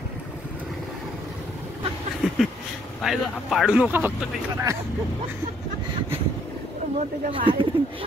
पाडू नका फक्त काही करा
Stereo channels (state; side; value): normal; both; correlation 0.66